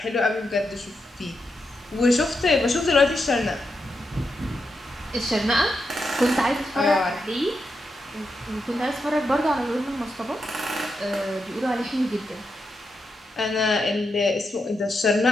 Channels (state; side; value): normal; both; correlation 0.85